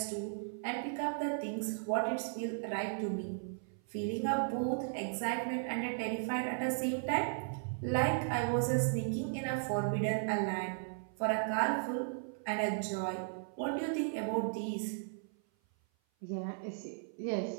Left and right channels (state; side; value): silent; left; 54 dB below the other